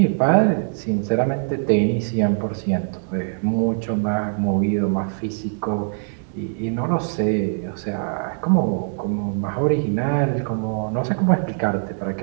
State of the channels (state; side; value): silent; left; digital silence